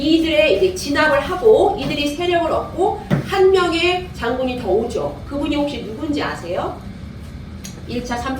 이제 진압을 하고 이들이 세력을 얻고 한 명의 장군이 더 오죠. 그분이 혹시 누군지 아세요? 1차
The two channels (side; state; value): both; identical; correlation 1.00